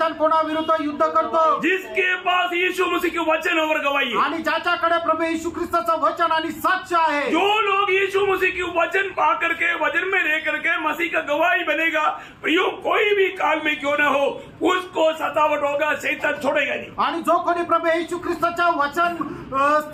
कोणाविरुद्ध युद्ध करतो? जिसके पास यीशु मसीह के वचन और गवाही है। आणि ज्याच्याकडे प्रभू येशू ख्रिस्ताचं वचन आणि साक्ष आहे. जो लोग यीशु मसीह के वचन पा करके, वचन में रह करके मसीह का गवाही बनेगा, प्रियो कोई भी काल में क्यों ना हो उसको सतावट होगा, शैतान छोड़ेगा नहीं। आणि जो कोणी प्रभू येशू ख्रिस्ताच्या वचन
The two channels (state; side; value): identical; both; correlation 1.00